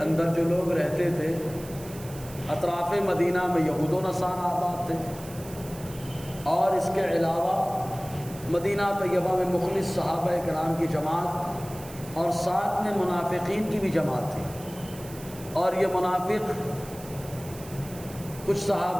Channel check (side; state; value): right; noise; hiss, 17 dB below the sound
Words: اندر جو لوگ رہتے تھے، اطراف مدینہ میں یہود و نصارہ آباد تھے، اور اس کے علاوہ مدینہ طیبہ میں مخلص صحابہ کرام کی جماعت اور ساتھ میں منافقین کی بھی جماعت تھی، اور یہ منافق کچھ